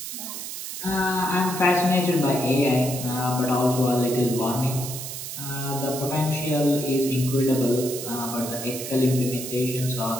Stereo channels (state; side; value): noise; right; hiss, 7 dB below the sound